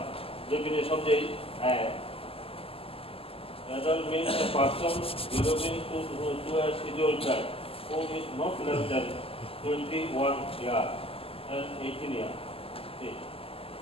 ডেফিনেশন যে adult means a person belonging to a scheduled tribe who is not less than 21 years and 18 years.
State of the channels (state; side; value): late; right; 0.27 ms